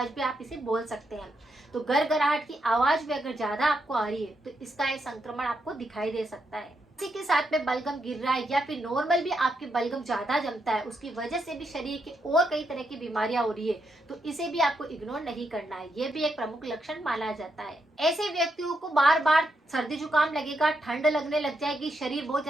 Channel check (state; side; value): normal; both; correlation 0.81